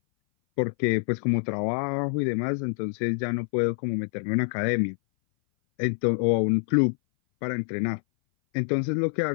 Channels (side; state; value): right; silent; 58 dB below the other